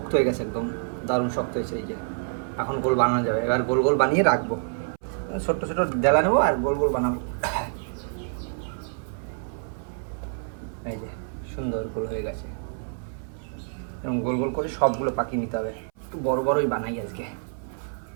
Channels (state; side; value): silent; left; 60 dB below the other